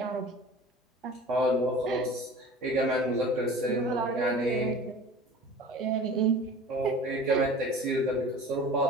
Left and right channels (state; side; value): normal; both; correlation 0.40